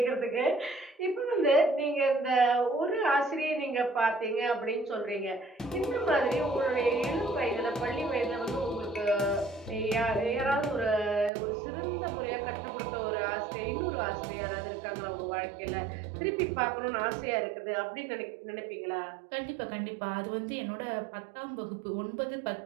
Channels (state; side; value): drops out; left; at 11.3 s